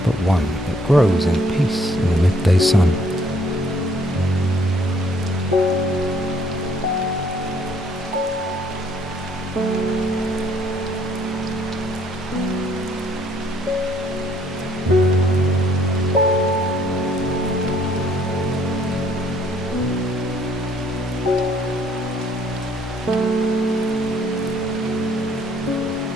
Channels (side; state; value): both; normal; correlation 0.63